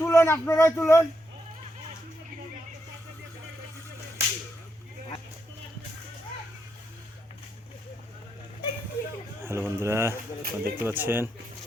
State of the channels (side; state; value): both; normal; correlation 0.81